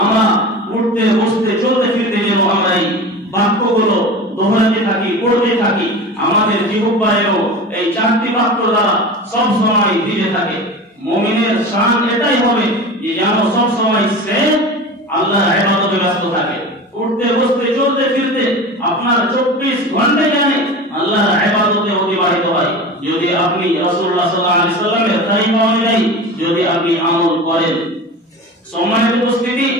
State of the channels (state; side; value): normal; both; correlation 0.32